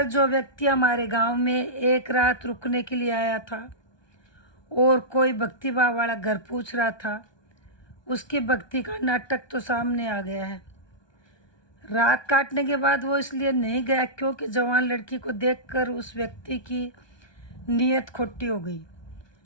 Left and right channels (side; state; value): right; late; 1.2 ms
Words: जो व्यक्ति हमारे गांव में एक रात रुकने के लिए आया था और कोई भक्तिभाव वाला घर पूछ रहा था, उसकी भक्ति का नाटक तो सामने आ गया है। रात काटने के बाद वो इसलिए नहीं गया क्योंकि जवान लड़की को देखकर उस व्यक्ति की नीयत खोटी हो गई,